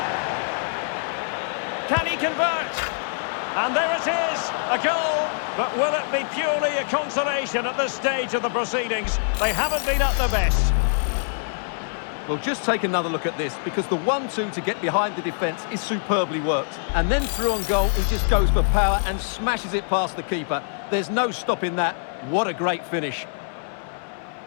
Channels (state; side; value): silent; right; digital silence